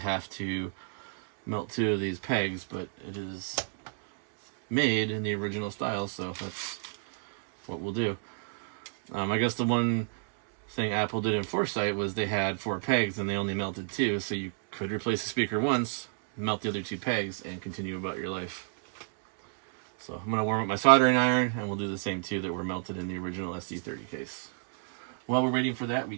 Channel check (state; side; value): silent; left; digital silence